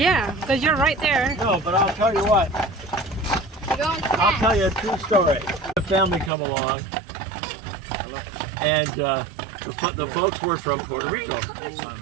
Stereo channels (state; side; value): drops out; left; at 6.3 s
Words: because you're right there. No, but I'll tell you what. You're going I'll fast. tell you a true story. The family come along, and the folks were from Puerto Rico,